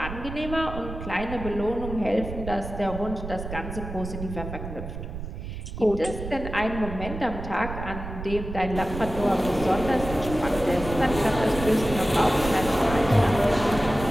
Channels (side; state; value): right; noise; rumble, 8 dB below the sound